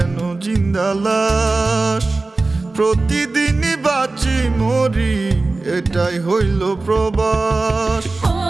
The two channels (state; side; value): quieter; left; 3.4 dB